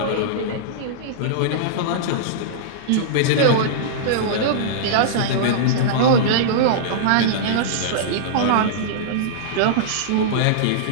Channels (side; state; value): both; different; correlation -0.03